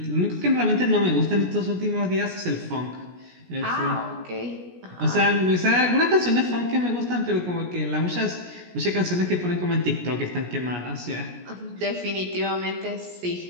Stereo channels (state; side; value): late; left; 17 ms